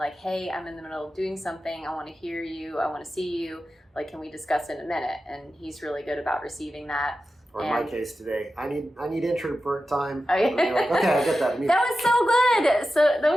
hey, I'm in the middle of doing something. I want to hear you. I want to see you. Like, can we discuss in a minute? And he's really good about receiving that. Or in my case today, I need introvert time. Oh, yeah. Like, okay, I get that. That was so good. That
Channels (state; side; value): normal; both; correlation 0.92